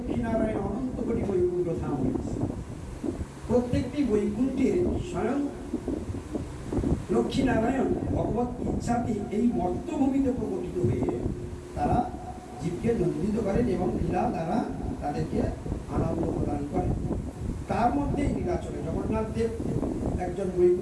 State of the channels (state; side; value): identical; both; correlation 1.00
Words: নারায়ণ, অনন্ত কোটি বৈকুণ্ঠ ধাম হয়েছে। প্রত্যেকটি বৈকুণ্ঠের স্বয়ং লক্ষ্মী নারায়ণ ভগবত ইচ্ছাতে এই মর্তভূমিতে প্রকটিত হয়ে তারা জীবকে নন্দিত করেন এবং লীলা দ্বারা তাদেরকে আনন্দ প্রদান করেন। তার মধ্যে নীলাচলে জগন্নাথ দেব একজন